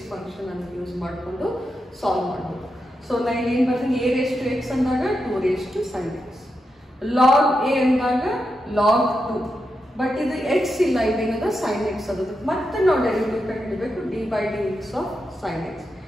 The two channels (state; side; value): normal; both; correlation 0.87